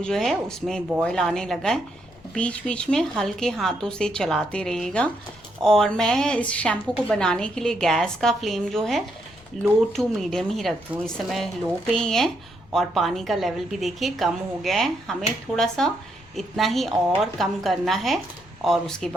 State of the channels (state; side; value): noise; left; rumble, 27 dB below the sound